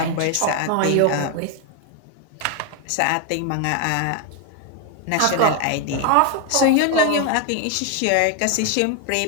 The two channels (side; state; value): both; different; correlation 0.01